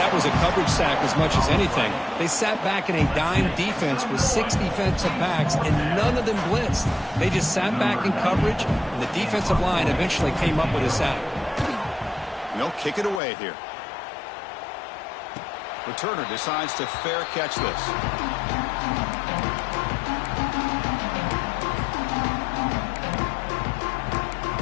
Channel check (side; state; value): right; drops out; at 13.2 s